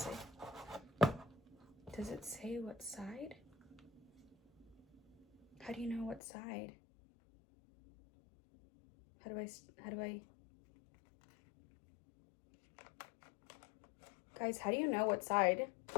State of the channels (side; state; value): right; drops out; at 6.2 s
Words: it say what side? How do you know what side? How do I Guys, how do you know what side?